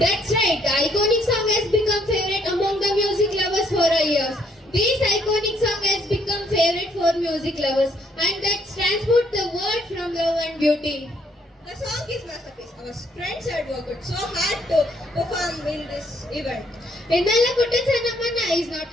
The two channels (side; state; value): both; normal; correlation 0.67